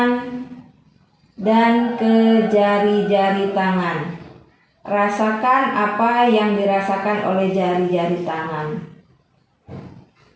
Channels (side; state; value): both; identical; correlation 1.00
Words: dan ke jari-jari tangan. Rasakan apa yang dirasakan oleh jari-jari tangan.